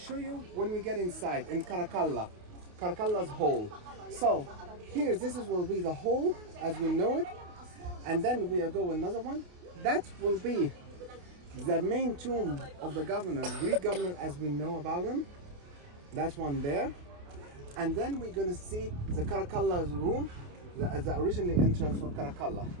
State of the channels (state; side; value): late; left; 28 ms